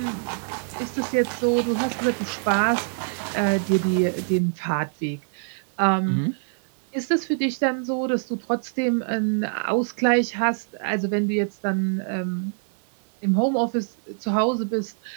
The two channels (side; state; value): left; silent; 56 dB below the other